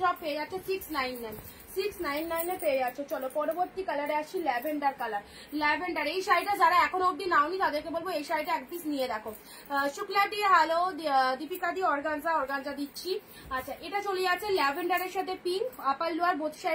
সব পেয়ে যাচ্ছে 699, 699 পেয়ে যাচ্ছ। চলো পরবর্তী কালারে আসছি, ল্যাভেন্ডার কালার। ল্যাভেন্ডার এই শাড়িটা যারা এখনো অব্দি নাওনি তাদেরকে বলবো এই শাড়িটা এক পিস নিয়ে দেখো। শুক্লা দিয়ে হ্যালো, দীপিকা দিয়ে অর্গানজা দিচ্ছি। আচ্ছা, এটা চলে যাচ্ছে ল্যাভেন্ডারের সাথে pink, upper lower both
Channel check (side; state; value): both; identical; correlation 1.00